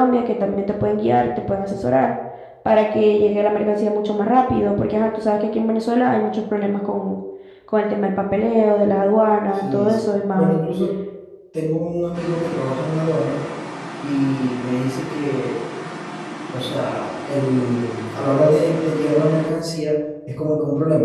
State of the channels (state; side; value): identical; both; correlation 1.00